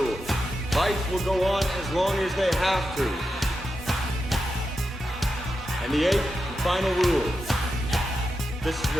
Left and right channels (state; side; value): normal; both; correlation 0.89